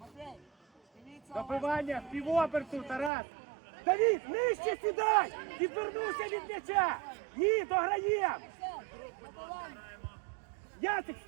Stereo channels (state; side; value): drops out; left; at 3.1 s